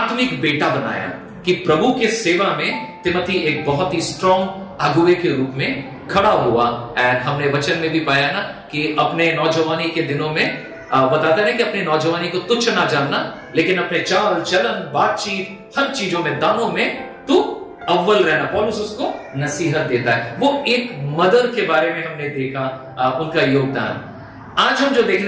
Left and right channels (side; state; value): both; identical; correlation 1.00